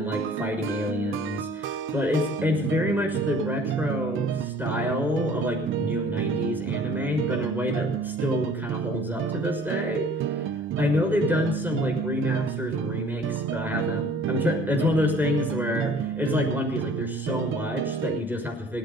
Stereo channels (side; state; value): both; normal; correlation 0.52